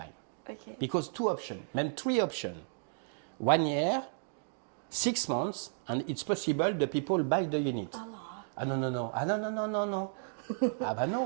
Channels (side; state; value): left; silent; digital silence